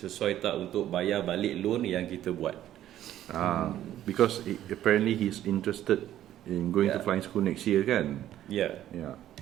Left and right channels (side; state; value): left; quieter; 12.3 dB